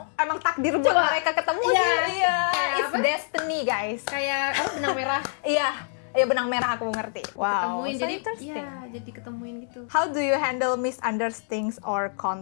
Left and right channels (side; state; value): right; silent; digital silence